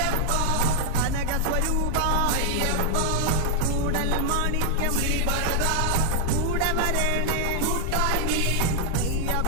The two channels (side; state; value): both; different; correlation 0.00